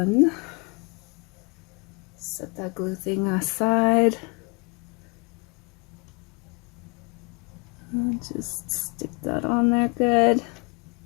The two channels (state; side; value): quieter; right; 32.1 dB